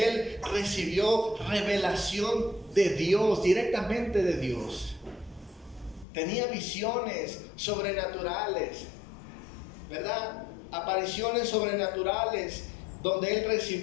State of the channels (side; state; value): right; drops out; at 6.1 s